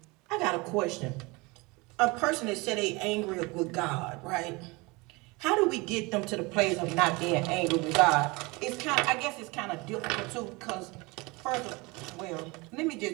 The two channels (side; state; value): left; quieter; 25.1 dB